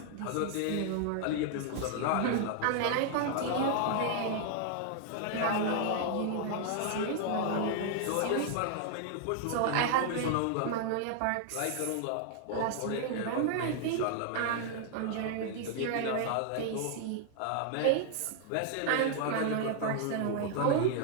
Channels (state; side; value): different; both; correlation 0.00